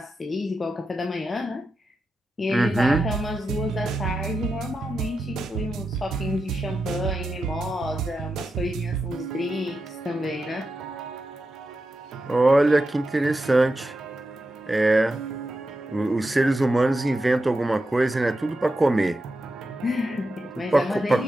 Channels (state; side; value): normal; both; correlation 0.89